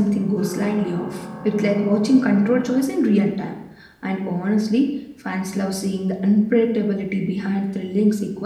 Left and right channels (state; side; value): identical; both; correlation 1.00